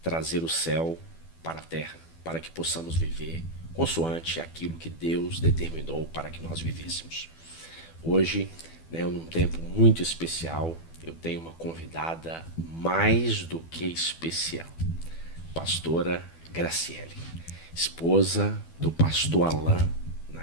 trazer o céu para a terra, para que possamos viver consoante aquilo que Deus determinou para que nós vivêssemos. Hoje, num tempo muito especial, eu tenho uma convidada mais do que especial, pastora Graciele, esposa do pastor Alain,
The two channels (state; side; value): late; right; 12 ms